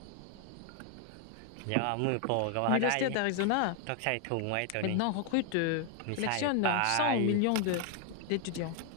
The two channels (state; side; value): different; both; correlation 0.00